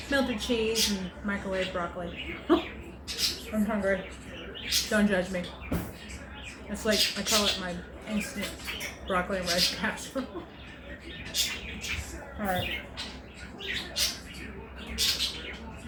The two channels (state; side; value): identical; both; correlation 1.00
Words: melted cheese and microwave broccoli. I'm hungry. Don't judge me. It's like, I call it my instant broccoli and rice casserole. Alright.